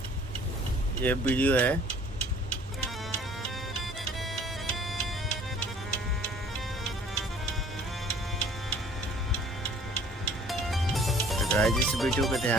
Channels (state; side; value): normal; both; correlation 0.53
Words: ये वीडियो है। तो गाइज इस वीडियो को